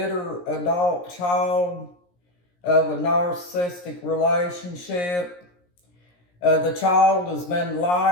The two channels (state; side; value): late; right; 17 ms